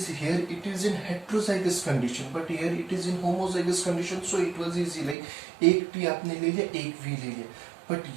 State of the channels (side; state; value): left; drops out; at 5.2 s